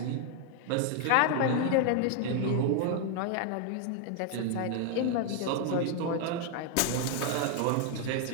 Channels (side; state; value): both; different; correlation 0.00